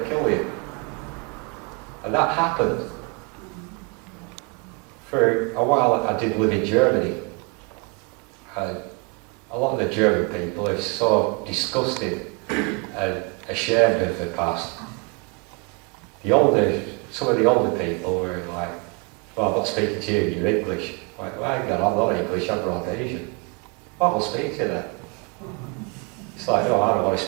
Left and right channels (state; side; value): quieter; left; 31.9 dB